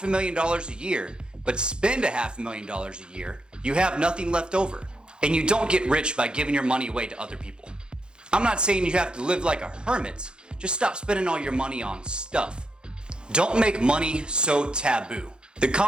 a year, but spend $500,000 a year, you have nothing left over. And you don't get rich by giving your money away to other people. I'm not saying you have to live like a hermit, just stop spending all your money on stuff. Don't make money so taboo. The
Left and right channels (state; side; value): late; left; 0.049 ms